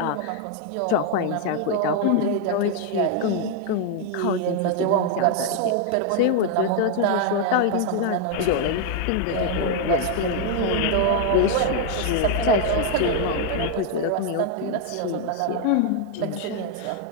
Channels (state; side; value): different; both; correlation 0.00